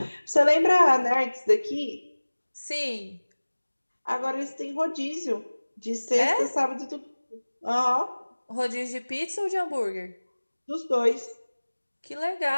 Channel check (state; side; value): inverted; both; correlation -1.00